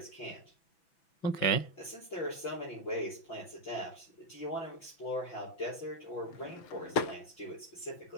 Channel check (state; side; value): late; right; 6.0 ms